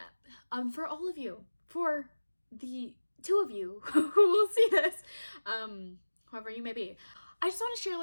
For all of you, for the two of you who will see this, whoever you may be. I just want to share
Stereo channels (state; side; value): inverted; both; correlation -1.00